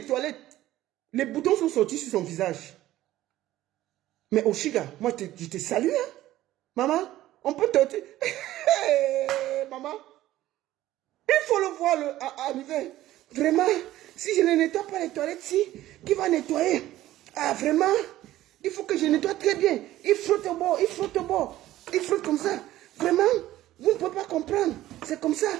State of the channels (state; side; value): quieter; left; 14.8 dB